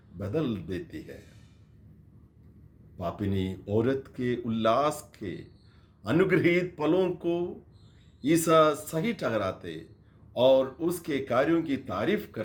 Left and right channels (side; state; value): both; identical; correlation 1.00